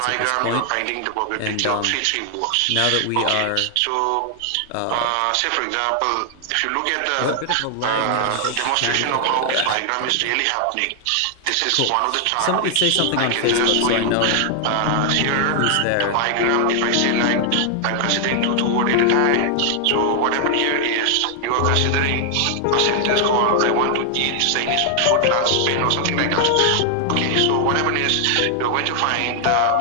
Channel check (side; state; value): both; different; correlation 0.00